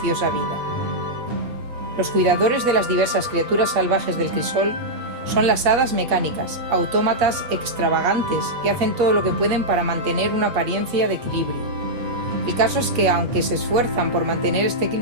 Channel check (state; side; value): late; left; 8.3 ms